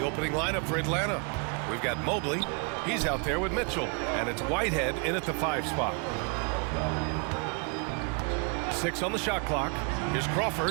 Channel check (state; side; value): quieter; left; 35.3 dB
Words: opening lineup for Atlanta. We've got Mobley. He's out there with Mitchell. And it's Whitehead in at the 5 spot. 6 on the shot clock. Here's